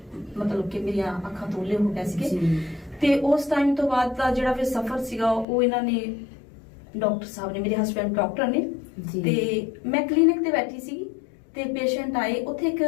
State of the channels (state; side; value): drops out; right; at 5.5 s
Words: ਮਤਲਬ ਕਿ ਮੇਰੀਆਂ ਅੱਖਾਂ ਤੋਲੇ ਹੋ ਗਏ ਸੀਗੇ। ਤੇ ਉਸ ਟਾਈਮ ਤੋਂ ਬਾਅਦ ਦਾ ਜਿਹੜਾ ਫਿਰ ਸਫ਼ਰ ਸੀਗਾ ਉਹ ਇਹਨਾਂ ਨੇ, ਡਾਕਟਰ ਸਾਹਿਬ ਨੇ, ਮੇਰੇ ਹਸਬੈਂਡ ਡਾਕਟਰ ਨੇ, ਤੇ ਮੈਂ ਕਲੀਨਿਕ ਤੇ ਬੈਠੀ ਸੀ ਤੇ ਪੇਸ਼ੈਂਟ ਆਏ। ਉੱਥੇ ਇੱਕ